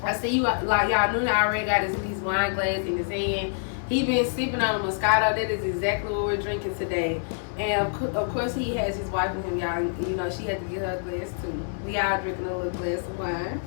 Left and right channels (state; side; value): silent; right; 61 dB below the other